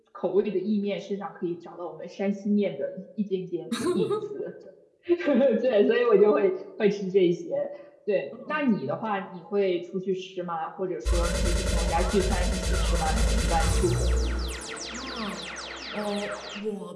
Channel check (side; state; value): both; identical; correlation 1.00